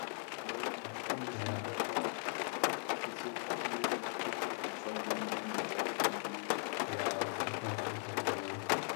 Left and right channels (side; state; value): right; silent; 52 dB below the other